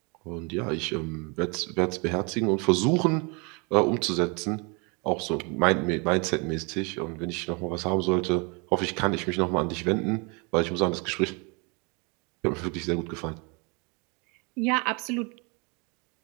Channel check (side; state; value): left; quieter; 31.4 dB